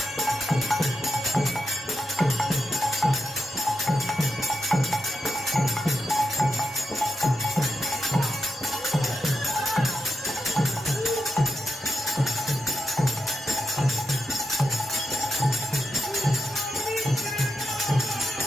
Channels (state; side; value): normal; both; correlation 0.86